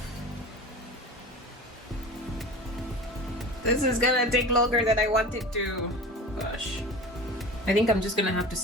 This is gonna take longer than I wanted to. Gosh. I think I'm just gonna have to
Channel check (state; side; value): normal; both; correlation 0.34